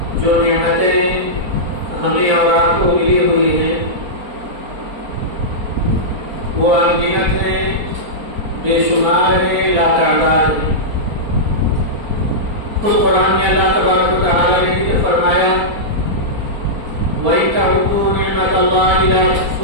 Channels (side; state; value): left; late; 4.3 ms